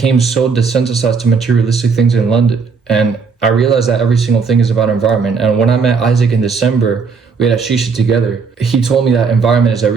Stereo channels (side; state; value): left; quieter; 5.3 dB